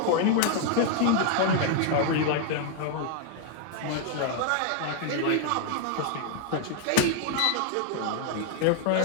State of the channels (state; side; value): different; both; correlation 0.00